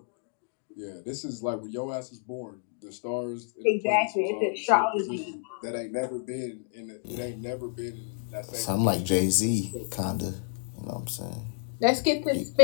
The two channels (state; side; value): silent; right; digital silence